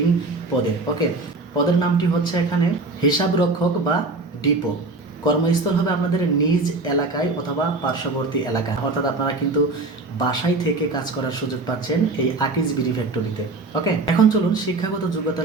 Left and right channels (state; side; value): quieter; left; 3.3 dB